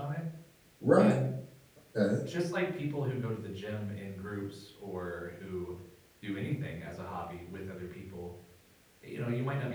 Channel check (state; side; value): identical; both; correlation 1.00